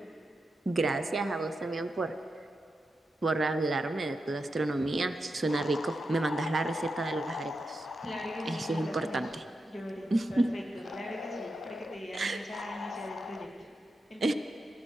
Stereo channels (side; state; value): both; normal; correlation 0.88